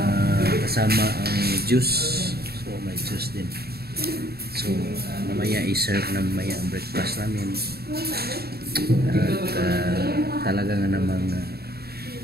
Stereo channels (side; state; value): left; late; 0.46 ms